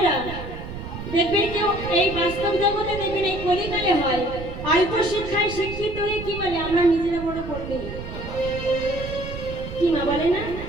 দেখবেন কেউ এই বাস্তব জগতে দেখবেন এই কলিকালে হয় অল্প শিক্ষায় শিক্ষিত হয়ে কি বলে? আমরা নিজেরা বড় পড়বে, কি মা বলে না?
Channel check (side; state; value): right; noise; rumble, 9 dB below the sound